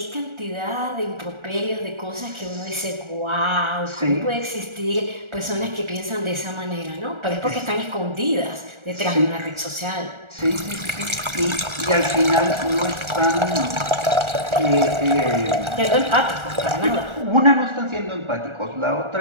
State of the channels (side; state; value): left; late; 1.4 ms